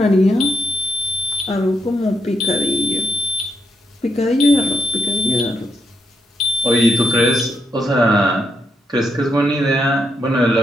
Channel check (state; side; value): normal; both; correlation 0.81